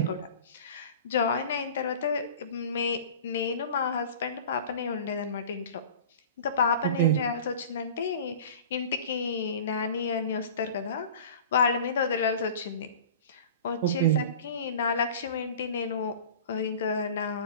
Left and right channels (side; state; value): both; inverted; correlation -0.39